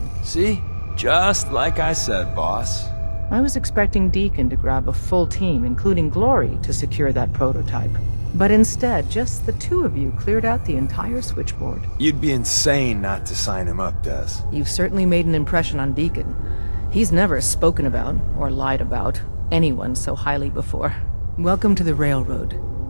See? Just like I said, boss. I was expecting Deacon to grab a full team, including Glory, to secure that prototype. But instead, just the two of you cleared out the entire switchboard. You'd be insane not to sign him up, Des. You've certainly made an impression on Deacon. He's never spoken about, or lied about, anyone so highly before. Welcome to the Railroad,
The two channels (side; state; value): both; inverted; correlation -1.00